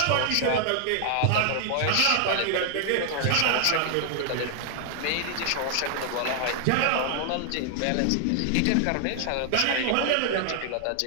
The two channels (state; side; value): different; both; correlation 0.00